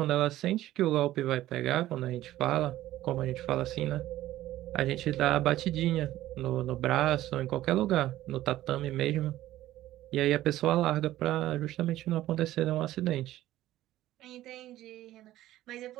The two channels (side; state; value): left; quieter; 14.6 dB